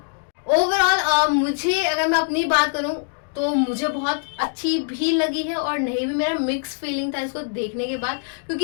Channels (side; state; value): right; silent; digital silence